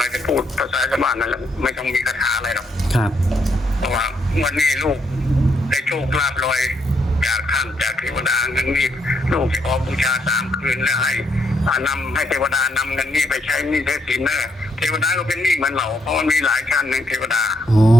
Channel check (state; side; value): normal; both; correlation 0.75